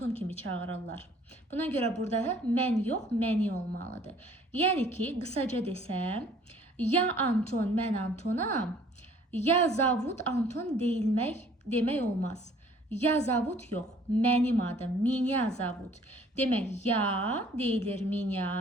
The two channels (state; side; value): normal; both; correlation 0.56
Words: kimi çağırırlar. Buna görə burada mən yox, məni olmalıdır. Yəni ki, qısaca desəm, ya Anton, mən Antonam, ya zovut Anton demək olmaz. Ya zovut yox, mənim adım, меня zovut. Demək, ya deyilir